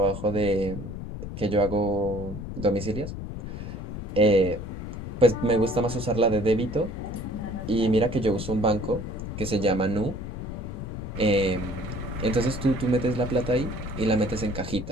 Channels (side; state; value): left; noise; rumble, 8 dB below the sound